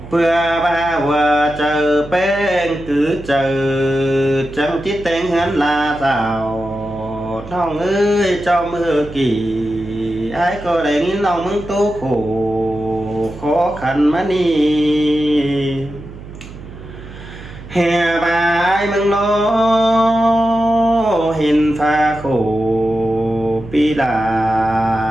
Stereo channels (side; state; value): right; noise; hum, 15 dB below the sound